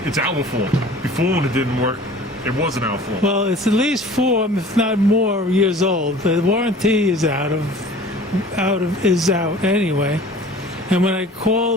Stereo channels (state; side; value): normal; both; correlation 0.45